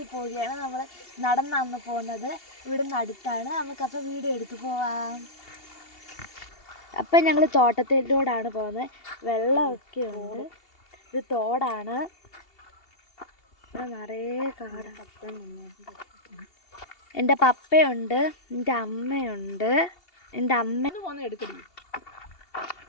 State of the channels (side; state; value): right; late; 2.8 ms